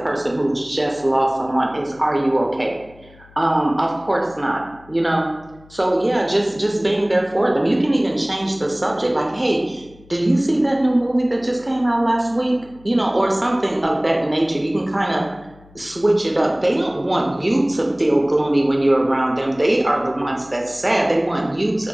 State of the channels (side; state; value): left; noise; hum, 25 dB below the sound